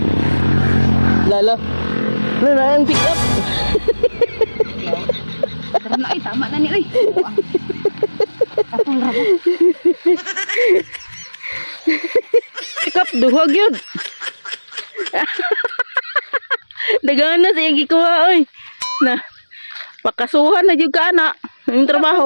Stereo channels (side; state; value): both; inverted; correlation -1.00